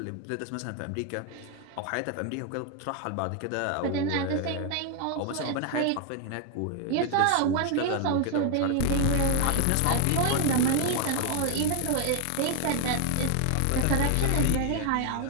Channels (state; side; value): different; both; correlation 0.01